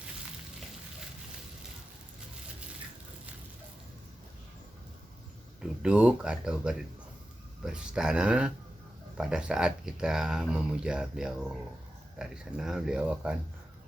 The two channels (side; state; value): both; normal; correlation 0.92